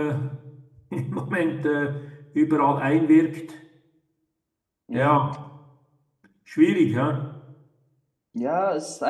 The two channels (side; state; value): both; identical; correlation 1.00